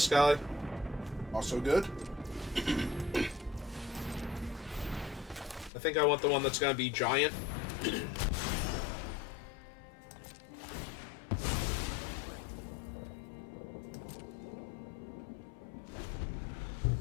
guy. Also good. I think I want the one that's going to be giant.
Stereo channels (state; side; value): drops out; right; at 5.7 s